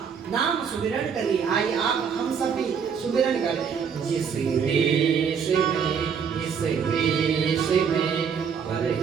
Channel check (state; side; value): quieter; left; 6.8 dB